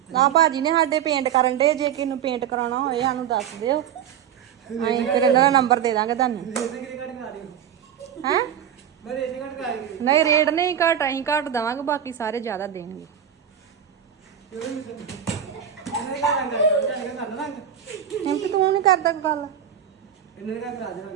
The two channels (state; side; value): quieter; left; 9.2 dB